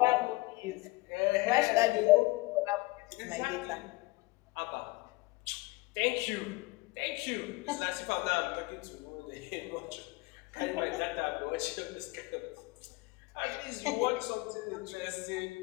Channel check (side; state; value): right; quieter; 22.5 dB